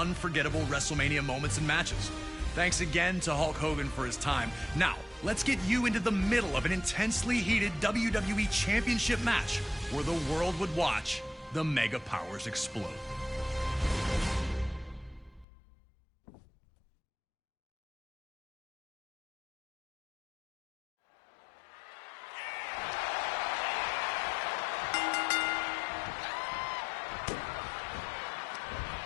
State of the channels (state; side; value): drops out; right; at 15.5 s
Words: WrestleMania moments and matches. Thanks again to Hulk Hogan for his time. Now, let's get you into the middle of an intensely heated WWE Championship match where the world would watch the Mega Powers explode.